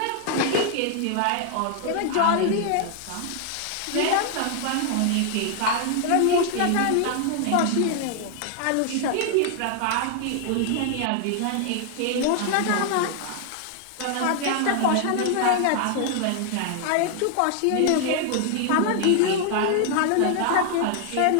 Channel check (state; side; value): different; both; correlation 0.00